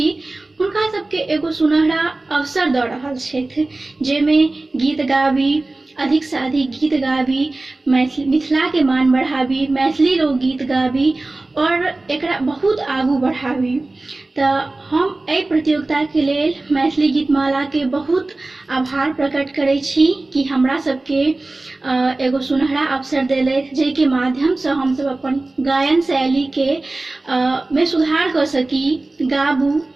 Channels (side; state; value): left; quieter; 3.0 dB